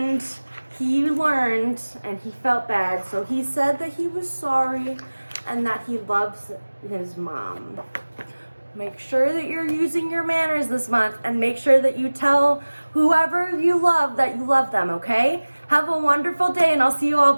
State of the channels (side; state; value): both; inverted; correlation -1.00